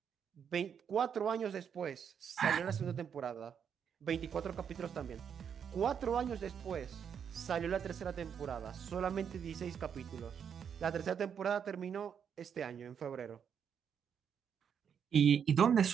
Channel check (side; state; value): left; quieter; 7.7 dB